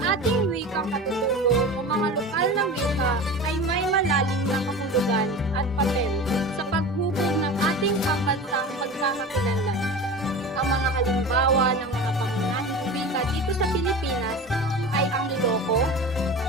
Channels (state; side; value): normal; both; correlation 0.32